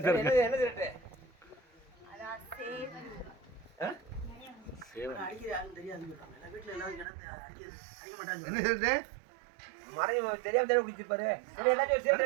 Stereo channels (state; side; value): drops out; left; at 7.1 s